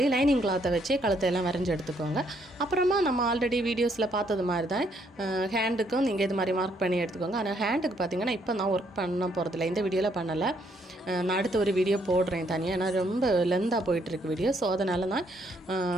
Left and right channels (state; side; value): normal; both; correlation 0.70